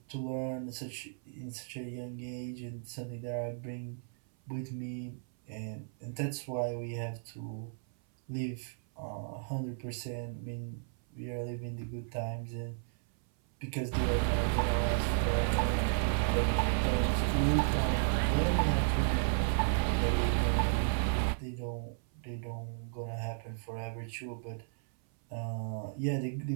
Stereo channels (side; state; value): left; silent; 55 dB below the other